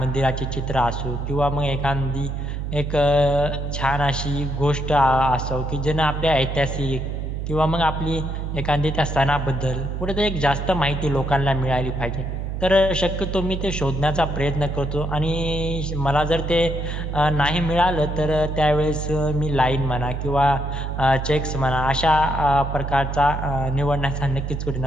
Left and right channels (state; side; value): noise; right; hum, 4 dB below the sound